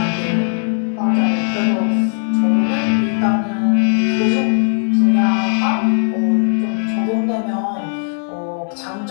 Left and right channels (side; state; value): right; silent; 65 dB below the other